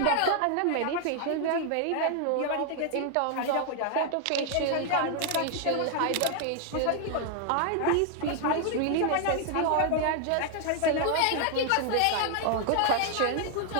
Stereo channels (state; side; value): different; both; correlation 0.00